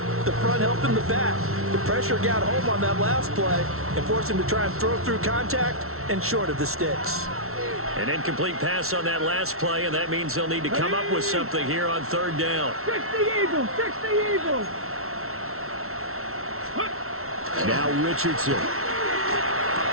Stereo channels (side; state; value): left; late; 0.63 ms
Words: helping the back. The pressure got home on that last play and forced him to try and throw through contact and short of the sticks. An incomplete pass on that last play, and that means they'll need to come up with something here on 3rd down. 60 Eagles, 60 Eagles. Now Richardson.